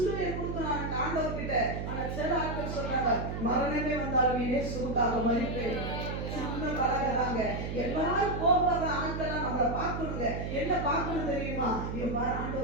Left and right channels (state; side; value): noise; right; hum, 4 dB below the sound